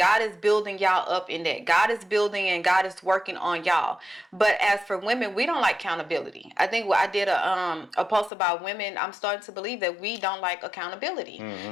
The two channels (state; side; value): drops out; right; at 8.3 s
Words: is building y'all up in that. God is building and God is working on y'all. But as for women, we don't like accountability. I think I did a post about women. I'm starting to believe that we don't like accountability. Mm-hmm.